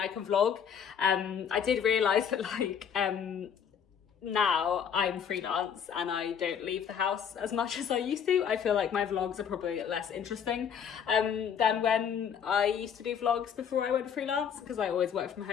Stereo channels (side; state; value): right; quieter; 7.8 dB